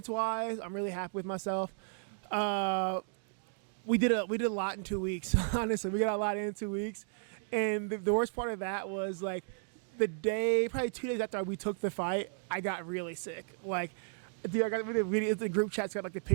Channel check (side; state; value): left; silent; digital silence